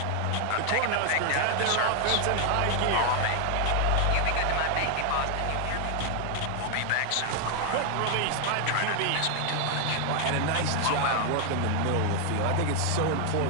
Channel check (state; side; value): different; both; correlation 0.00